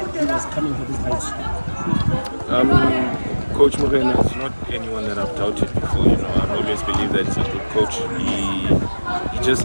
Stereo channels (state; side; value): inverted; both; correlation -1.00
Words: he was coming to these heights? Coach Morena is not anyone that I've doubted before. I've always believed that he's a good coach. He just